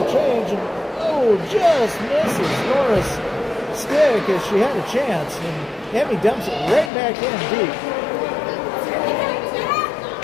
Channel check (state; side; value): drops out; right; at 6.9 s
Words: change, and oh, just misses Nora's stick as she had a chance, and Emmy dumps it right back in deep.